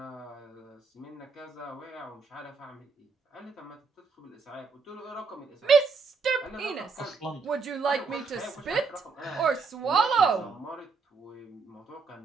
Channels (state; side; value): quieter; left; 4.8 dB